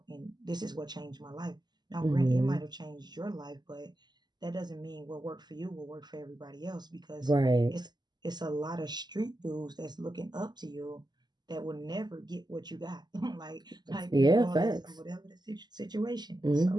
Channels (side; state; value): left; late; 0.21 ms